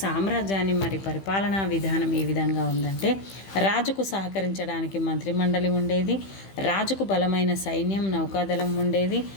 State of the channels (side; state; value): right; late; 15 ms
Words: మరి పరిపాలనా విధానం ఏ విధంగా ఉందంటే, రాజుకు సహకరించడానికి మంత్రిమండలి ఉండేది, రాజుకు బలమైన సైన్యం, నౌకాదళం ఉండేది.